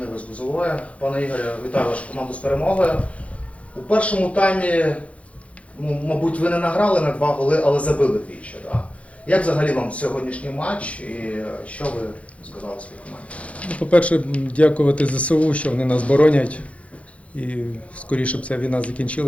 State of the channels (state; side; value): late; right; 0.064 ms